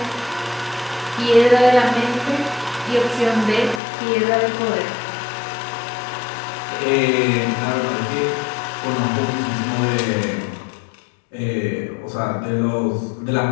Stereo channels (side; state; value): right; drops out; at 3.8 s